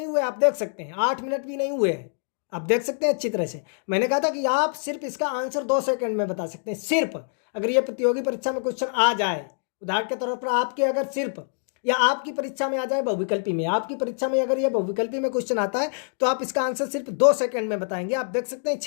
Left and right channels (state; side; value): silent; right; digital silence